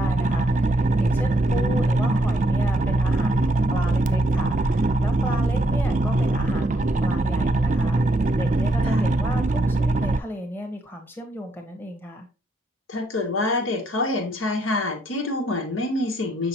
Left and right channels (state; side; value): normal; both; correlation 0.74